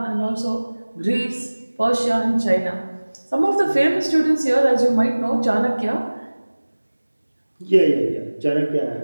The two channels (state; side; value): inverted; both; correlation -1.00